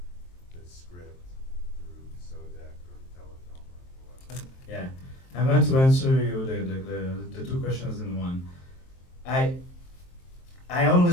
the script through Sodec or Telefilm or whatever? Yeah, I'm going to answer you the two questions in one. I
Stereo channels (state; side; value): late; right; 23 ms